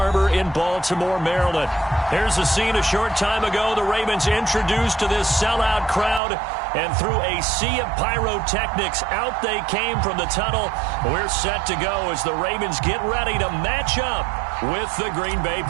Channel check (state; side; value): drops out; left; at 6.2 s